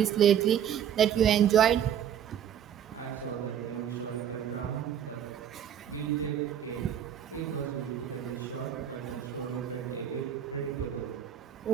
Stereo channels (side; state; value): left; quieter; 9.4 dB